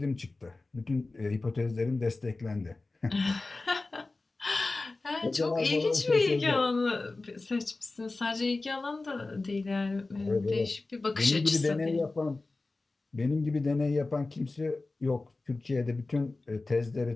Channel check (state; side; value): quieter; right; 3.4 dB